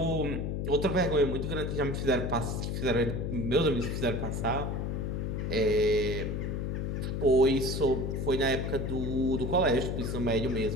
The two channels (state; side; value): noise; left; hum, 2 dB below the sound